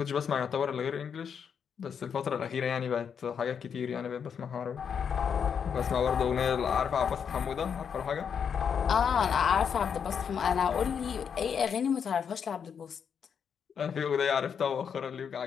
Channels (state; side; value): quieter; right; 7.2 dB